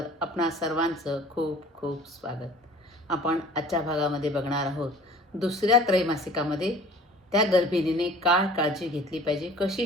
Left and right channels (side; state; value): both; normal; correlation 0.47